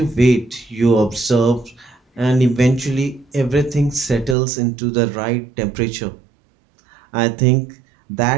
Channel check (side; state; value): left; drops out; at 4.4 s